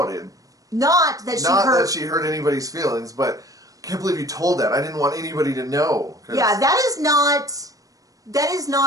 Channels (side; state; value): left; late; 0.17 ms